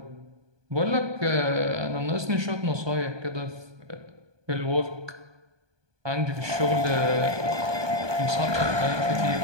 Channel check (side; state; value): left; late; 1.2 ms